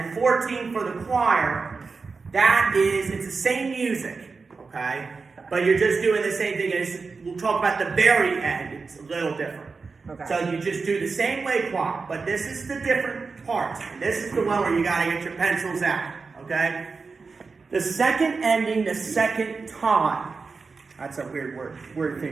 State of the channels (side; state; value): left; quieter; 4.5 dB